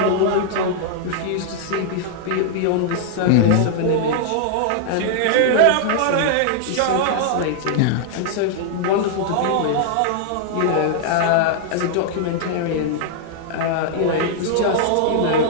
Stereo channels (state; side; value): different; both; correlation -0.01